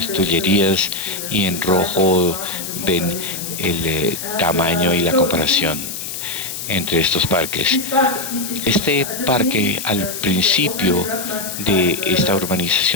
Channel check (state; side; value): noise; left; hiss, 7 dB below the sound